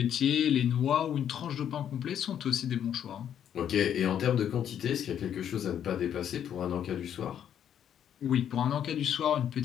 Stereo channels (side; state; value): right; quieter; 9.5 dB